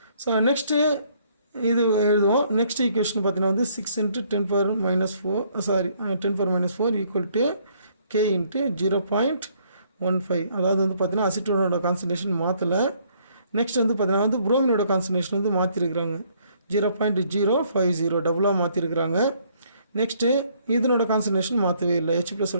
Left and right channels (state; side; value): inverted; both; correlation -0.66